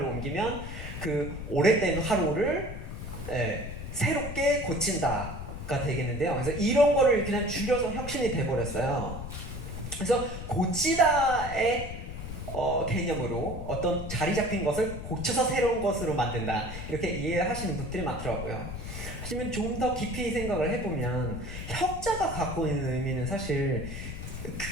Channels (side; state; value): left; noise; rumble, 8 dB below the sound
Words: 옮기면 그 오래된 화로를 새롭게 고친다가 되겠는데요. 그래서 이런 거를 그냥 줄여서 혁신이 돼버렸어요. 그래서 고치다의 개념으로 어떤 자리 잡힌 것을 고쳐서 새로운 것으로 만든다 이렇게 이해하시는 분들이 많더라고요. 하지만 좀 더 깊이 생각을 해보면 혁자가 갖고 있는 의미는 사실